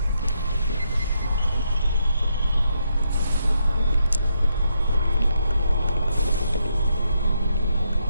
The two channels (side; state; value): both; inverted; correlation -0.79